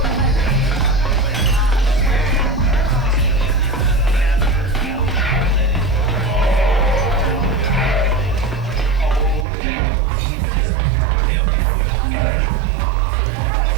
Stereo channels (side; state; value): left; drops out; at 9.5 s